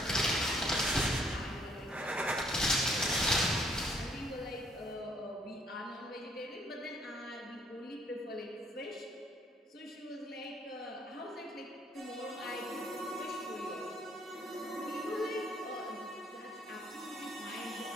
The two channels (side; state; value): both; normal; correlation 0.65